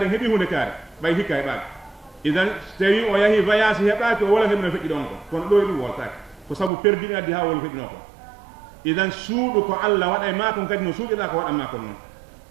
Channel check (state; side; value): drops out; left; at 6.7 s